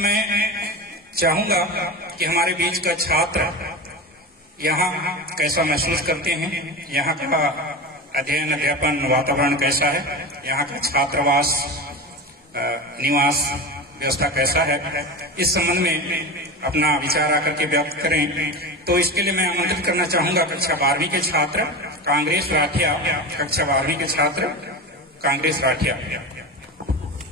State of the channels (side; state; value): both; normal; correlation 0.26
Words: चाहूंगा कि हमारे बीच का छात्र यहाँ कैसा महसूस करते हैं, यहाँ का अध्ययन अध्यापन वातावरण कैसा है, यहाँ का छात्रावास निवास व्यवस्था कैसा है, इस संबंध में अपना विचार आकर के व्यक्त करें। तो इसके लिए मैं आमंत्रित करना चाहूंगा कक्षा 12वीं के छात्र कांग्रेस राठिया, कक्षा 12वीं के छात्र कांग्रेस राठिया।